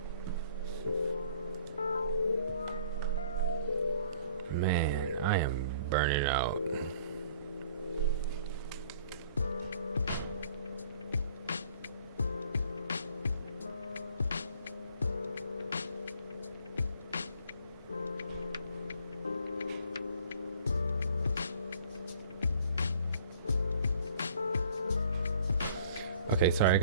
Man, I am burning out. Okay, sorry, I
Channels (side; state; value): both; inverted; correlation -0.55